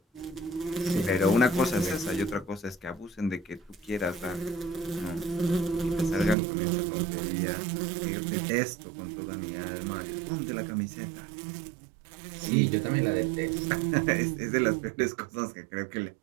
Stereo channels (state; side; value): drops out; left; at 6.4 s